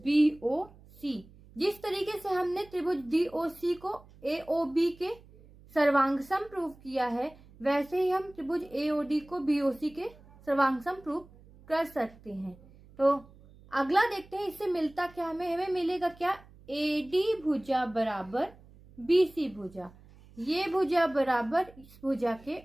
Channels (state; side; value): noise; right; hum, 24 dB below the sound